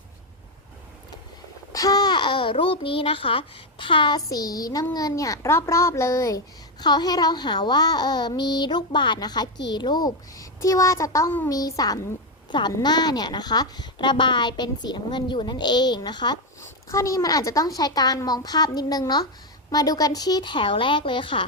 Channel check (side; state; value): both; normal; correlation 0.07